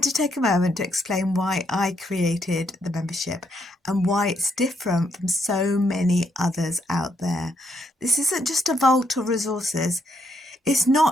to take a moment to explain why I created the membership and why it's different from so many others out there. This isn't just a vault of resources. It's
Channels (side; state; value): both; normal; correlation 0.75